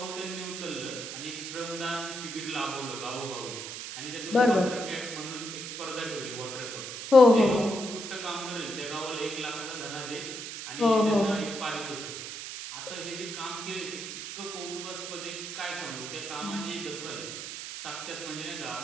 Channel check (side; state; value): right; noise; hiss, 7 dB below the sound